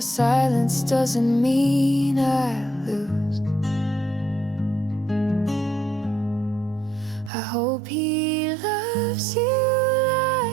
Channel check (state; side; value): drops out; left; at 7.3 s